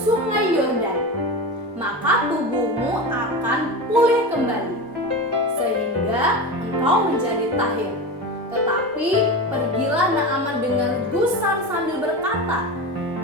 Yordan, maka tubuhmu akan pulih kembali, sehingga engkau menjadi tahir." Tetapi pergilah Naaman dengan gusar sambil berkata,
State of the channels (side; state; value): both; normal; correlation 0.24